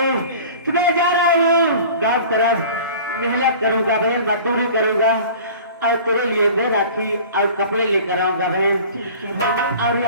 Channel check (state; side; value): inverted; both; correlation -0.43